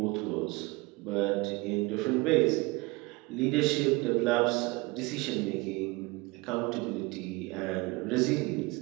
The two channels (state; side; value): quieter; left; 24.5 dB